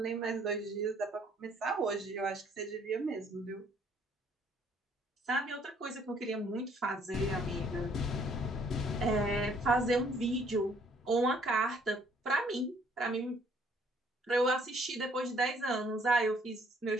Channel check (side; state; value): both; normal; correlation 0.63